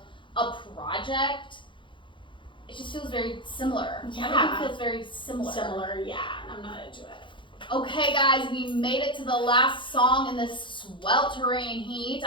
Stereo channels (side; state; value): right; late; 0.24 ms